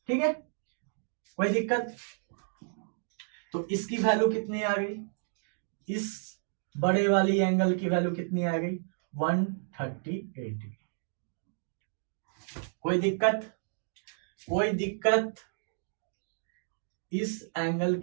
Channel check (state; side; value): silent; left; digital silence